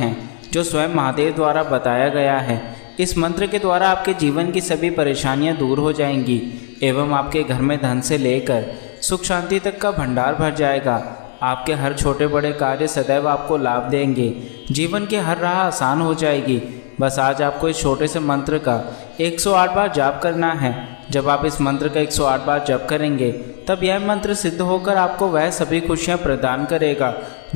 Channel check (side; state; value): right; silent; digital silence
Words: हैं जो स्वयं महादेव द्वारा बताया गया है। इस मंत्र के द्वारा आपके जीवन की सभी परेशानियां दूर हो जाएंगी एवं आपके घर में धन से लेकर सुख शांति तक का भंडार भर जाएगा। आपके हर छोटे बड़े कार्य सदैव आपको लाभ देंगे। जीवन की हर राह आसान हो जाएगी। बस आज आपको इस छोटे से मंत्र का 108 बार जाप करना है। जब आप इस मंत्र का 108 बार जप करेंगे तब यह मंत्र सिद्ध होकर आपको वह सभी खुशियां प्रदान करेगा